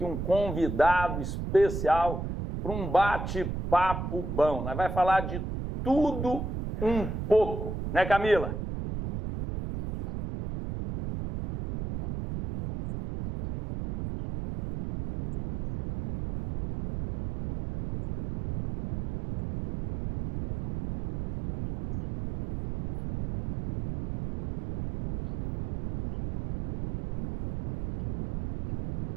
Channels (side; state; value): right; noise; rumble, 6 dB below the sound